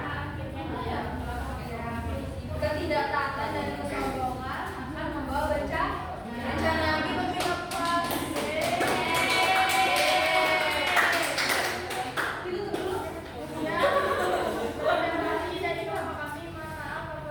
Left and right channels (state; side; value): identical; both; correlation 1.00